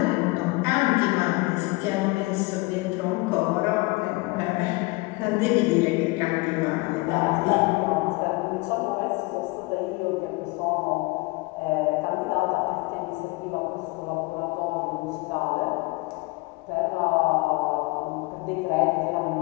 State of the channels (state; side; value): quieter; right; 24.6 dB